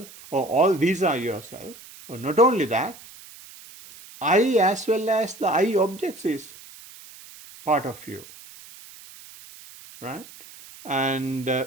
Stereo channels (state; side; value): noise; right; hiss, 19 dB below the sound